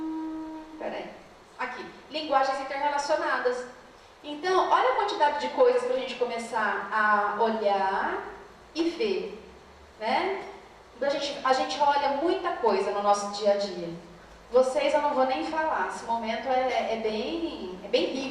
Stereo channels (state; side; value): identical; both; correlation 1.00